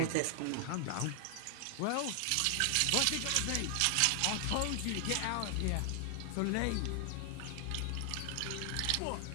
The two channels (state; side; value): different; both; correlation 0.00